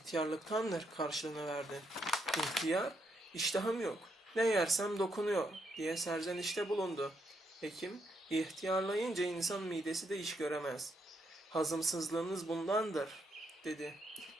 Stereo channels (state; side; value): normal; both; correlation 0.78